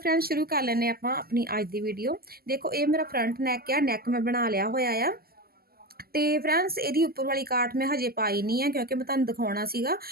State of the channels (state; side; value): late; left; 0.45 ms